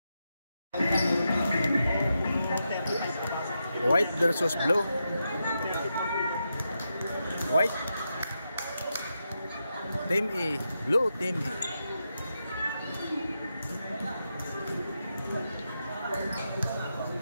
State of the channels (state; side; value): inverted; both; correlation -0.86